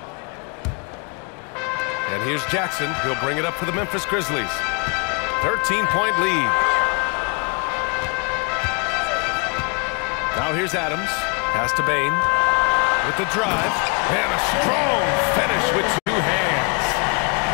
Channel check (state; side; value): quieter; right; 34.4 dB